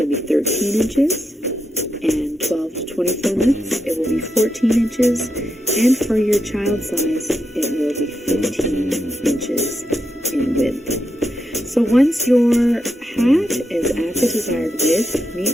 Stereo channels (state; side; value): normal; both; correlation 0.85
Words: be 13 inches. And 12 to 24 months, it will be 14 inches. And for your child size, it will be 15 inches in width. So once your hat is at the desired width,